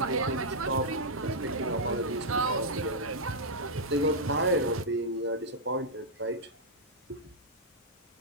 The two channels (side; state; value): both; normal; correlation -0.08